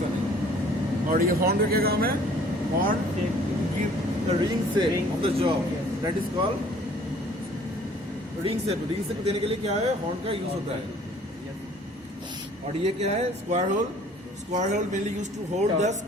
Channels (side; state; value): both; normal; correlation 0.54